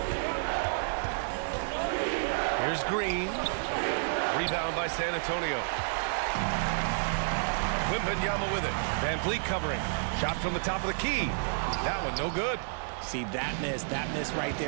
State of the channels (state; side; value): silent; left; 58 dB below the other